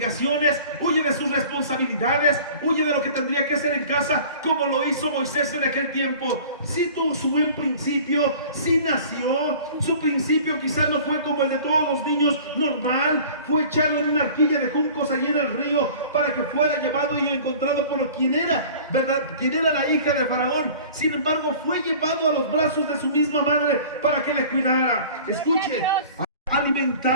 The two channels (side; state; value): both; inverted; correlation -0.45